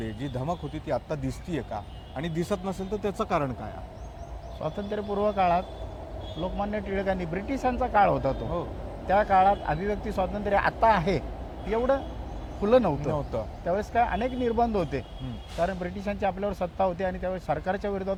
जी धमक होती ती आत्ता दिसतीये का? आणि दिसत नसेल तर त्याचं कारण काय आहे? स्वातंत्र्यपूर्व काळात लोकमान्य टिळकांनी, ब्रिटिशांचा काळ होता तो, त्या काळात अभिव्यक्ती स्वातंत्र्य आता आहे एवढं खुलं नव्हतं. त्यावेळेस काय अनेक निर्बंध होते, कारण ब्रिटिशांची आपल्यावर सत्ता होती आणि त्यावेळेस सरकारच्या विरोधात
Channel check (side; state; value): both; identical; correlation 1.00